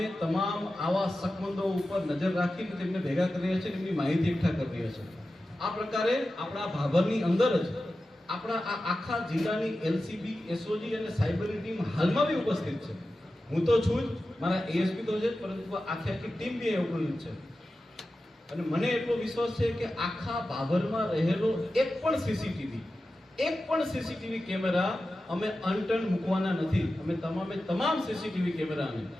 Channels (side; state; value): both; normal; correlation 0.93